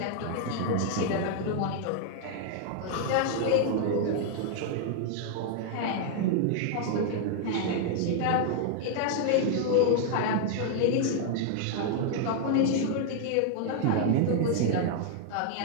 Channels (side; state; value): both; different; correlation 0.00